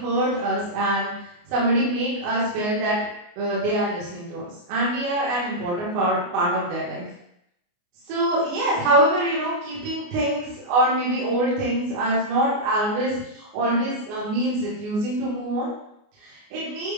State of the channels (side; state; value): left; late; 29 ms